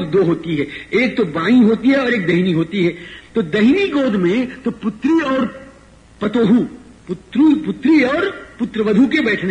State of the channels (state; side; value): identical; both; correlation 1.00